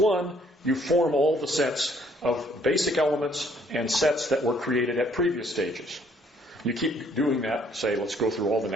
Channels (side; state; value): both; normal; correlation 0.63